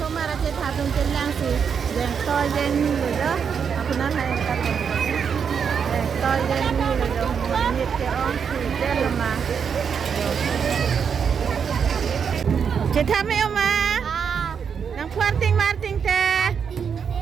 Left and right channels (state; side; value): quieter; left; 6.9 dB